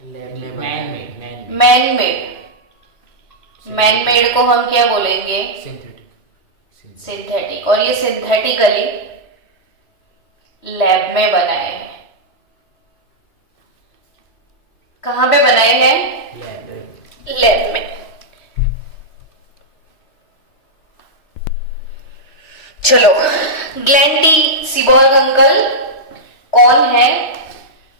Man made. मैन मेड को हम क्या बोलेंगे? सिंथेटिक। और ये सिंथेटिकली लैब में बनाए हैं। कहां पे बनाए हैं? लैब में। चलो, ग्लेन टी सीबॉर्ग अंकल कौन है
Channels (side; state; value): right; late; 3.2 ms